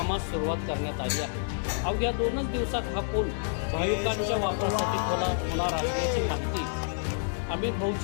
सुरुवात करण्यात आली आहे। अवघ्या 2 दिवसात हा पूल भाविकांच्या वापरासाठी खुला होणार असल्याची माहिती अमित भाऊ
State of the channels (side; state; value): right; silent; digital silence